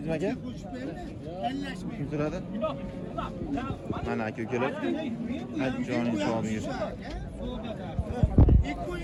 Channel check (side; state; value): both; identical; correlation 1.00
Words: aka? Kim so'radi? Mana aka ukalar. Joning sog' yur.